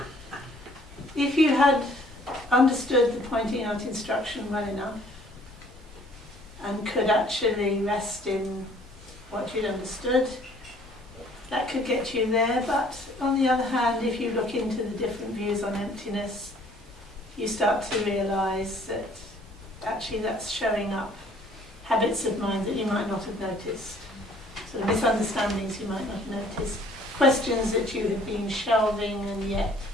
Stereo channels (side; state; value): both; normal; correlation 0.57